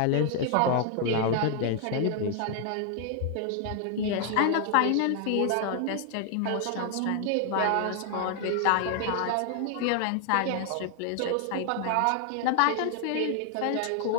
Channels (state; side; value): different; both; correlation 0.00